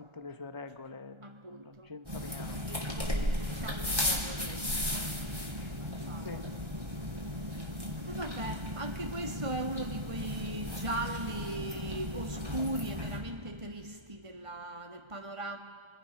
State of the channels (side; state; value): left; late; 1.3 ms